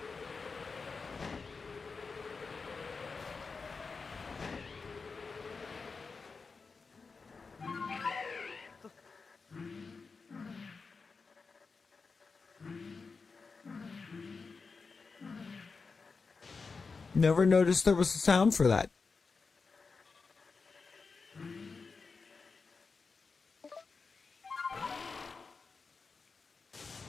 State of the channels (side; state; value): right; quieter; 4.6 dB